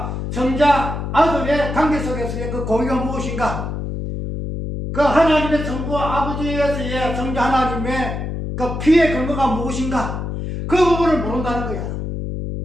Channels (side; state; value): left; noise; hum, 4 dB below the sound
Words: 성자 아들의 관계 속에서의 그 공의가 무엇인가? 그 하나님의 성부 아버지에서의 성자 하나님의 그 피의 근거가 무엇인가? 그 부분을 모른다는 거야.